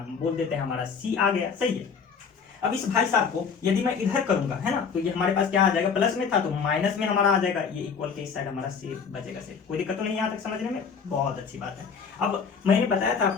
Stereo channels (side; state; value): right; quieter; 6.0 dB